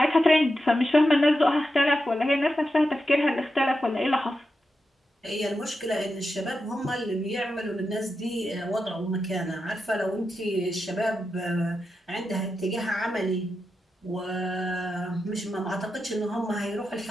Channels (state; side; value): normal; both; correlation 0.88